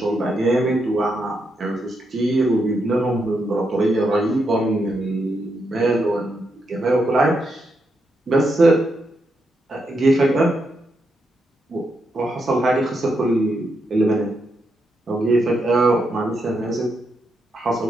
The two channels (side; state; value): both; normal; correlation 0.82